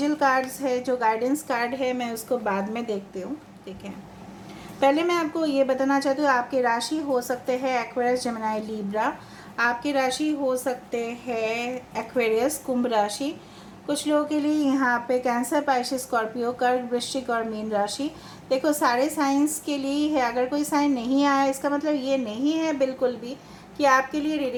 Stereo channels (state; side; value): identical; both; correlation 1.00